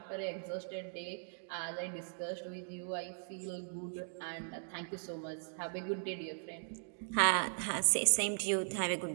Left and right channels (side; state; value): left; silent; digital silence